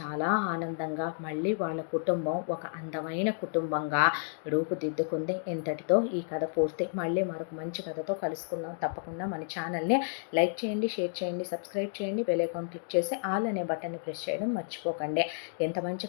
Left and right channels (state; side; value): silent; right; digital silence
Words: ఆనందంగా మళ్ళీ వాళ్ళ కుటుంబం ఒక అందమైన కుటుంబంగా రూపుదిద్దుకుంది. ఇంతటితో ఈ కథ పూర్తి. మళ్ళీ మరొక మంచి కథతో కలుసుకుందాం. తప్పకుండా మన ఛానల్ని లైక్ చేయండి, షేర్ చేయండి, సబ్స్క్రైబ్ చేయండి, బెల్ ఐకాన్ క్లిక్ చేసి ఆల్ అనే బటన్ని ప్రెస్ చేయడం మర్చిపోకండి. ఎంత మంచి